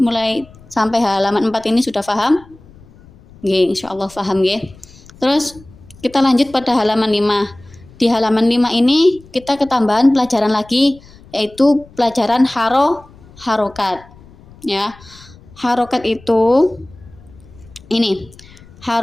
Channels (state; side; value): noise; left; rumble, 24 dB below the sound